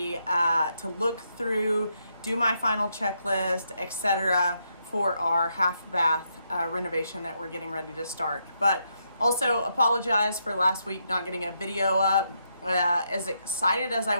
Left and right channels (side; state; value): both; inverted; correlation -0.79